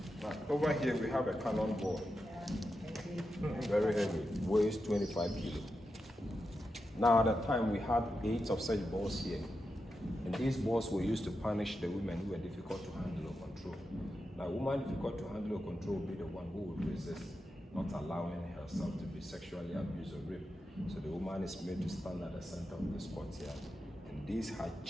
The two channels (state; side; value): normal; both; correlation 0.88